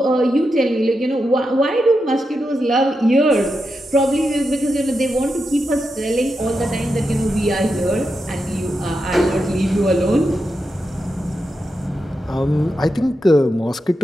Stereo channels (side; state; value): both; normal; correlation 0.87